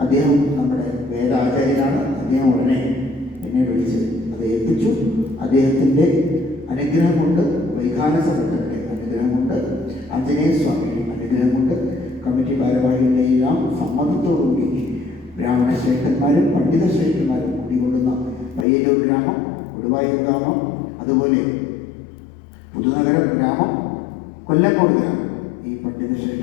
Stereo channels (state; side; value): drops out; right; at 18.7 s